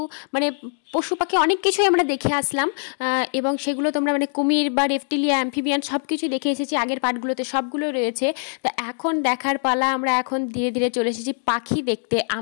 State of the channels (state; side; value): silent; right; 58 dB below the other